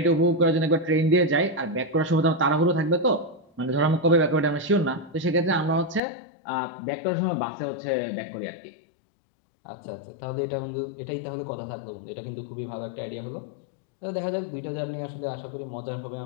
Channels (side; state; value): right; drops out; at 6.0 s